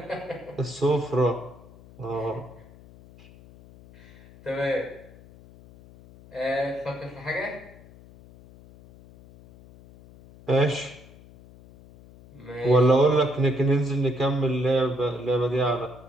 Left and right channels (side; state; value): left; noise; hum, 22 dB below the sound